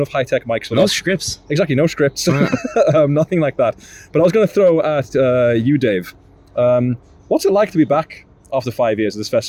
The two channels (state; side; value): identical; both; correlation 1.00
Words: high-tech mics for no scripts. Exactly, no scripts. Nothing like that. But I was going to throw at you, Dave. What's it like to be back after 5 years of this